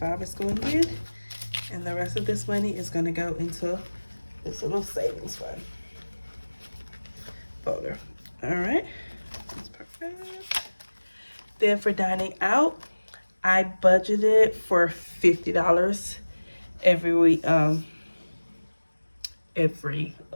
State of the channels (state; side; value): inverted; both; correlation -1.00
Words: is going in, and the rest of this money is going to go into this little savings fund folder. All right, that's perfect. Then for dining out, I budgeted for $50 every week. What